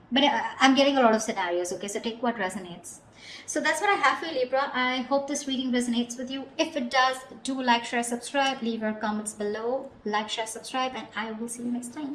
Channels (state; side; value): identical; both; correlation 1.00